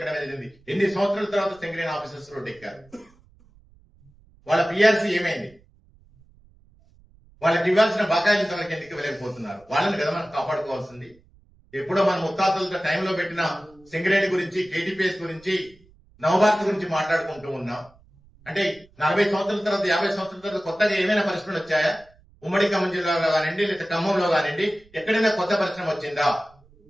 జరిగింది. ఎన్ని సంవత్సరాల తర్వాత సింగరేణి ఆఫీసర్స్ రోడ్ ఎక్కారు? వాళ్ళ పిఆర్సీ ఏమైంది? వాళ్ళకి ఇవ్వాల్సిన బకాయిలు తనకి ఎందుకు ఇవ్వలేకపోతున్నారు? వాళ్ళని కదా మనం కాపాడుకోవాల్సింది. ఎప్పుడో మన ముత్తాతలతో టైంలో పెట్టిన సింగరేణి గురించి, కేటీపీఎస్ గురించి, నవభారత్ గురించి మాట్లాడుకుంటూ ఉన్నాం. అంటే 40 సంవత్సరాల తర్వాత 50 సంవత్సరాల తర్వాత కొత్తగా ఏమైనా పరిశ్రమలు వచ్చాయా? ఉమ్మడి ఖమ్మం జిల్లాలో కానివ్వండి, లేదా ఖమ్మంలో కానివ్వండి, ఎక్కడైనా కొత్త పరిశ్రమ వచ్చిందా?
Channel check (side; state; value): right; noise; rumble, 29 dB below the sound